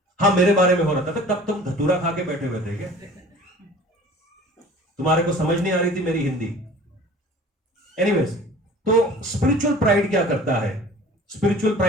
हाँ मेरे बारे में हो रहा था। तब तुम धतूरा खा के बैठे हुए थे क्या? तुम्हारे को समझ नहीं आ रही थी मेरी हिंदी? एनीवेज, तो स्पिरिचुअल प्राइड क्या करता है? स्पिरिचुअल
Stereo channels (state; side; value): normal; both; correlation 0.45